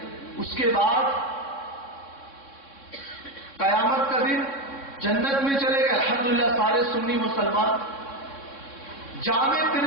اس کے بعد قیامت کا دن جنت میں چلے گئے الحمدللہ سارے سنی مسلمان. جامع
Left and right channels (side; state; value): right; late; 3.6 ms